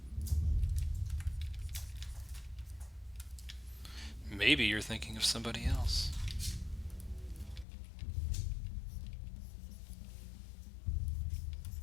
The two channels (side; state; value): right; drops out; at 7.7 s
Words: Maybe you're thinking of somebody else.